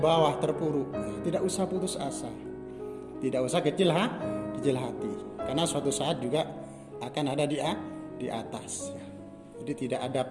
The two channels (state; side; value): identical; both; correlation 1.00